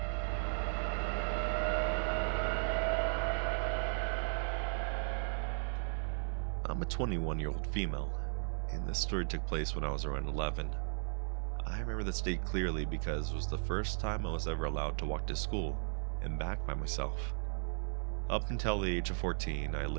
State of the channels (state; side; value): silent; left; digital silence